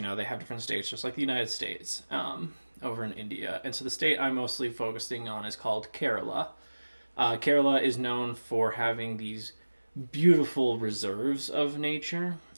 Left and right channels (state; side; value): inverted; both; correlation -1.00